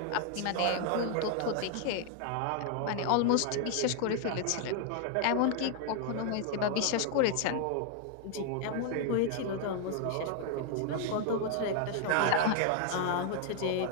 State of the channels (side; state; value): both; different; correlation 0.00